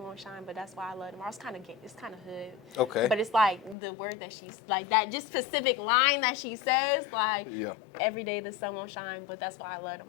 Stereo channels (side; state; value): right; drops out; at 3.8 s